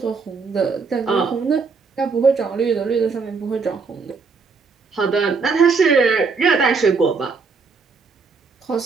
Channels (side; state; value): left; quieter; 4.8 dB